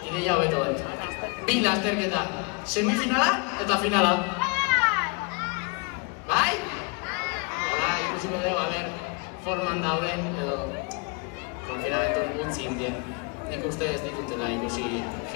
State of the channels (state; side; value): quieter; right; 32.0 dB